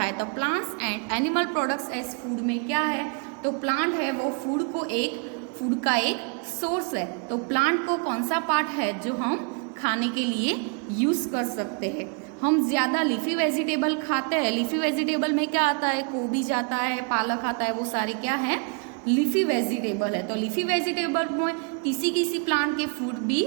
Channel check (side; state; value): left; quieter; 38.4 dB